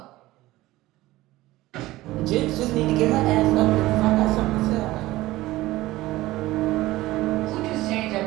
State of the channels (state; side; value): quieter; left; 17.7 dB